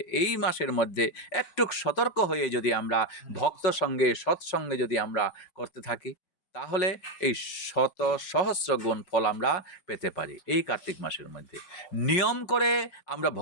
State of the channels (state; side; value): late; right; 5.4 ms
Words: এই মাসের মধ্যে একটু সতর্ক হয়ে যদি আমরা ভক্ত সঙ্গে সৎসঙ্গে যদি আমরা করতে থাকি, তাহলে এই শত সহস্র গুণ ফল আমরা পেতে পারি। এই কার্তিক মাসের মধ্যে নিয়ম করে আমরা